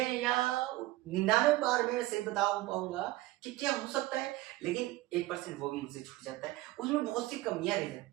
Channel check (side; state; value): left; quieter; 17.9 dB